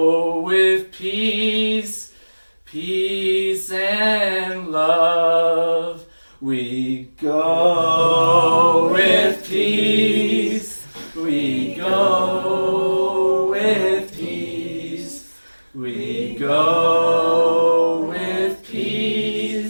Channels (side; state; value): both; inverted; correlation -1.00